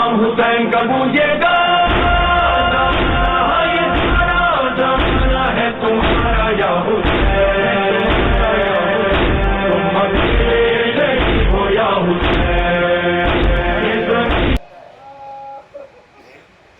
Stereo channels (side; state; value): both; identical; correlation 1.00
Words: حسین کا گونجے گا یہ سارا زمانہ ہے تمہارا یا حسین تم اکیلے ہو یا حسین